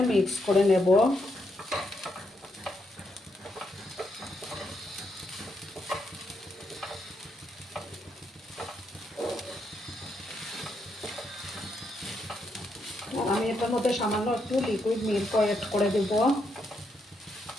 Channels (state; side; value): normal; both; correlation 0.79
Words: মিক্স করে নেব। আর আমি এটার মধ্যে সামান্য একটু লিকুইড মিল্ক অ্যাড করে দেব।